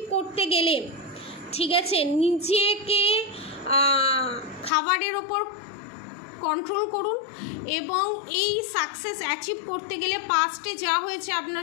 করতে গেলে, ঠিক আছে, নিজেকে খাবারের ওপর কন্ট্রোল করুন এবং এই সাকসেস অ্যাচিভ করতে গেলে পাস্টে যা হয়েছে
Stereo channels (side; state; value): right; drops out; at 4.7 s